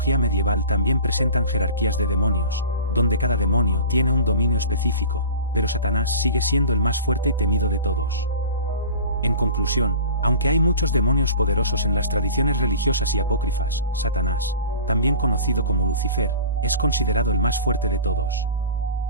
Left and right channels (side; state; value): both; inverted; correlation -0.39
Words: medieval también presentan jerarquías de demonios, donde cada demonio tiene un dominio específico, pero Satanás sigue siendo el más fuerte y temido de todos. En conclusión, aunque hay muchos demonios poderosos en las tradiciones religiosas y apócrifas, Satanás, también conocido como Lucifer, es considerado el más fuerte de todos.